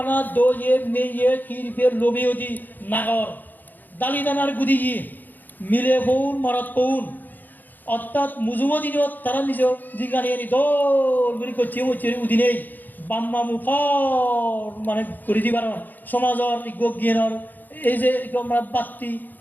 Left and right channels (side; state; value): right; late; 0.086 ms